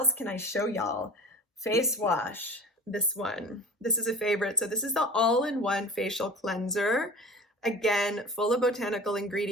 can I show y'all? Face wash. This one. This is a favorite. So this is the all-in-one facial cleanser. Again, full of botanical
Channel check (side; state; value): both; normal; correlation 0.39